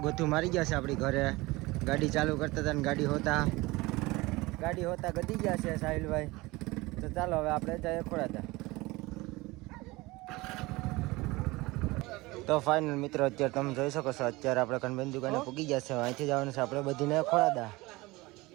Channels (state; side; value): quieter; left; 21.6 dB